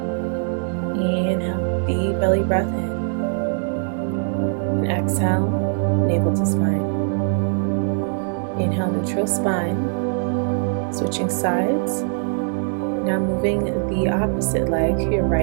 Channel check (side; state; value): left; silent; 56 dB below the other